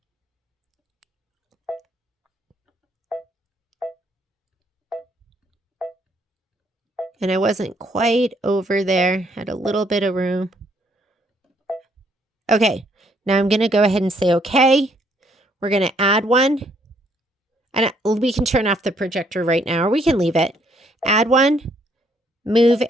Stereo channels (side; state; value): both; normal; correlation 0.68